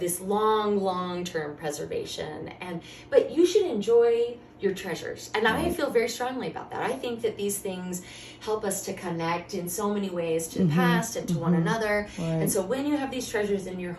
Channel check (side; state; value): both; identical; correlation 1.00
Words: long-term preservation. But you should enjoy your treasures. And I feel very strongly about that. I think that these things help us to connect in so many ways to the past and to one another. Right. And so when you have these treasures in your